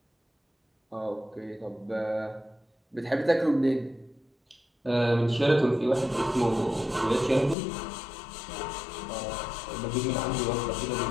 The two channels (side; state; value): right; drops out; at 7.6 s